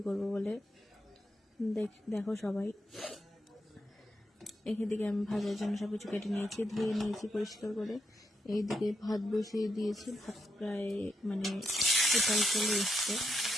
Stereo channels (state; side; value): normal; both; correlation 0.83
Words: করব বলে। দেখো সবাই, এখান থেকে আমি ভাজার জন্য সব কিছু কেটে নিয়েছি, ধুয়ে নিয়েছি পরিষ্কার করে। এইদিকে ভাত বসিয়ে দিয়েছি, ভাত প্রায় উতাল চলে এসছে।